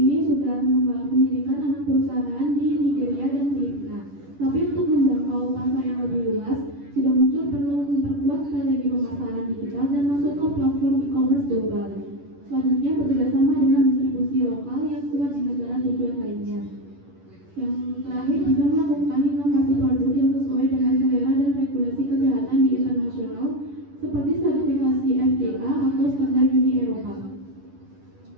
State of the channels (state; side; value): late; left; 11 ms